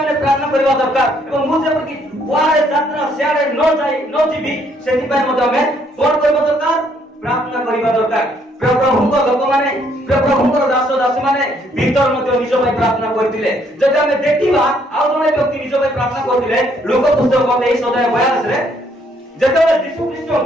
ଆମେ ପ୍ରାର୍ଥନା କରିବା ଦରକାର ଏବଂ ମୁଁ ଯେପରି କୁଆଡ଼େ ଯାତ୍ରା ସିଆଡ଼େ ନ ଯିବି ସେଥିପାଇଁ ମଧ୍ୟ ଆମେ କଣ କରିବା ଦରକାର ପ୍ରାର୍ଥନା କରିବା ଦରକାର ପ୍ରଭୁଙ୍କ ଲୋକମାନେ ପ୍ରଭୁଙ୍କର ଦାସ ଦାସୀ ମାନେ ଭିତର ମଧ୍ୟ ନିଜ ପାଇଁ ପ୍ରାର୍ଥନା କରିଥିଲେ ଯଦି ଆମେ ଦେଖିବା ଆଉ ଜଣେ ବ୍ୟକ୍ତି ନିଜ ପାଇଁ ପ୍ରାର୍ଥନା କରିଥିଲେ ଲୋକ ପୁସ୍ତକ 23:42 ରେ ଯେତେବେଳେ ଯୀଶୁ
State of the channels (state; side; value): normal; both; correlation 0.68